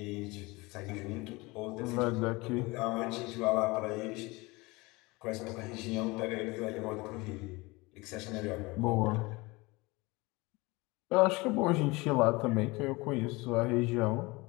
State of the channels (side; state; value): right; quieter; 23.7 dB